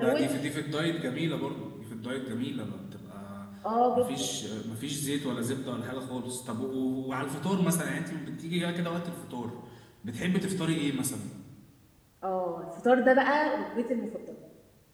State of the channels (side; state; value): both; identical; correlation 1.00